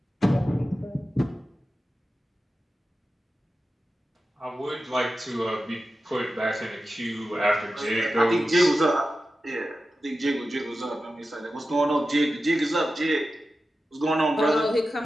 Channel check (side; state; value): both; normal; correlation 0.93